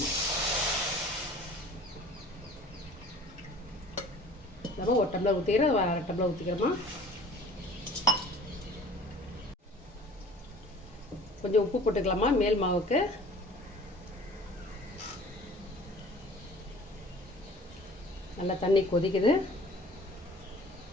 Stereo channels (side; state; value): both; normal; correlation 0.47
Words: நம்ம ஒரு டம்ளர் ஊற்றிக்கிறோம், அரை டம்ளர் ஊற்றிக்கிறோமா. கொஞ்சம் உப்பு போட்டுக்கலாமா மேல் மாவுக்கு. நல்லா தண்ணி கொதிக்குது.